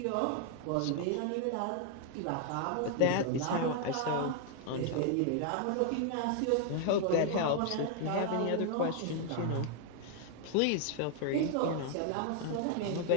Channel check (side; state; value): both; different; correlation 0.00